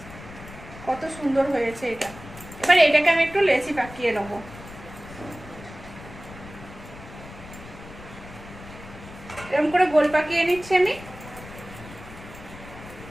কত সুন্দর হয়েছে এটা। এবার এটাকে আমি একটু লেচি পাকিয়ে নেবো। এরকম করে গোল পাকিয়ে নিচ্ছি আমি।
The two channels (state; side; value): noise; left; rumble, 16 dB below the sound